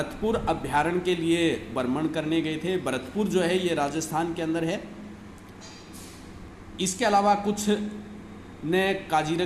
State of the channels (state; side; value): identical; both; correlation 1.00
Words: अभ्यारण्य के लिए भ्रमण करने गए थे। भरतपुर जो है ये राजस्थान के अंदर है। इसके अलावा कुछ ने